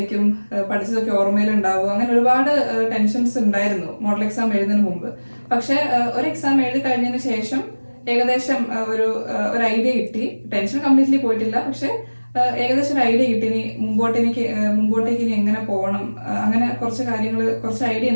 പഠിച്ചതൊക്കെ ഓർമ്മയിലുണ്ടാവും, അങ്ങനെ ഒരുപാട് ടെൻഷൻസ് ഉണ്ടായിരുന്നു മോഡൽ എക്സാം എഴുതുന്നതിന് മുമ്പ്. പക്ഷെ ഒരു എക്സാം എഴുതി കഴിഞ്ഞതിന് ശേഷം ഏകദേശം ഒരു ഐഡിയ കിട്ടി. ടെൻഷൻ കംപ്ലീറ്റ്ലി പോയിട്ടില്ല, പക്ഷെ ഏകദേശം ഒരു ഐഡിയ കിട്ടി. ഇനി മുമ്പോട്ടേക്ക് ഇനി എങ്ങനെ പോകണം, അങ്ങനെ കുറച്ച് ഐഡിയ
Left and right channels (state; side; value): inverted; both; correlation -1.00